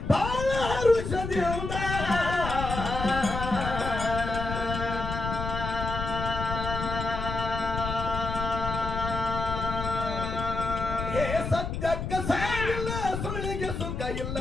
ಬಾಳ ಹರುಷದಿಂದ. ಹೇ ಸತ್ಯಕ್ಕ ಸಾಗಿಲ್ಲ, ಸುಳ್ಳಿಗೆ ಸುಖ ಇಲ್ಲ,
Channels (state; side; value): noise; left; rumble, 4 dB below the sound